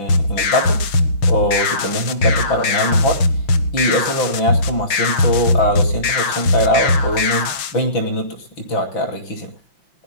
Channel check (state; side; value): late; right; 6.3 ms